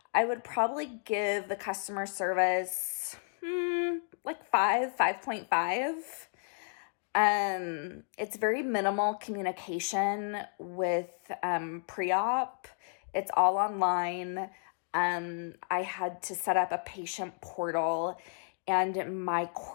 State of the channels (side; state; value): right; silent; digital silence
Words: I would probably give the customer service like 5.5. It's very minimal communication with pre-op. It's all online. I had to set up a patient portal, and my